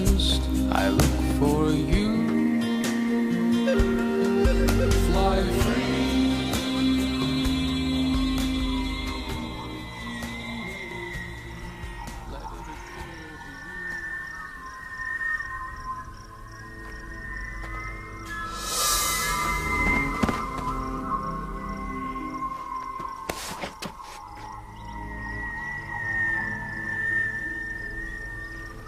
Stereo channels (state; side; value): identical; both; correlation 1.00